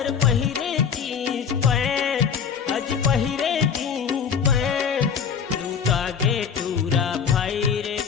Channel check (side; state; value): right; quieter; 7.0 dB